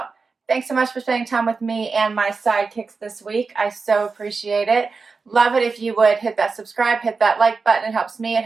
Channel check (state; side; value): quieter; left; 4.5 dB